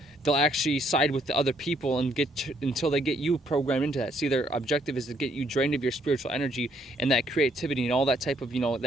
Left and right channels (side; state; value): both; normal; correlation 0.69